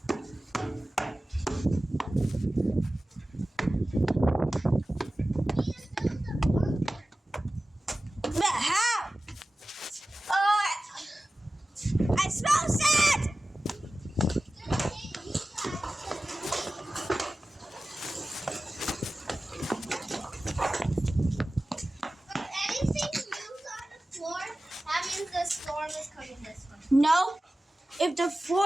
But how? Oh, I smell sand! If anything moves on the floor, that means the storm is coming this way. No. If the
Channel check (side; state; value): both; normal; correlation 0.96